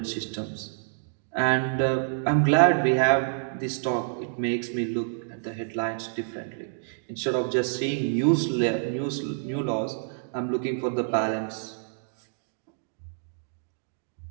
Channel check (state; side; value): silent; left; digital silence